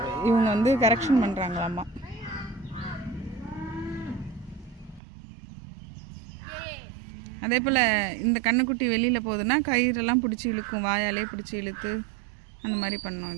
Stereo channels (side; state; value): left; drops out; at 5.0 s